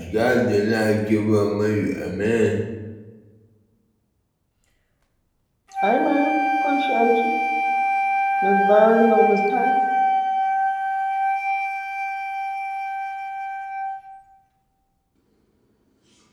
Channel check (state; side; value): identical; both; correlation 1.00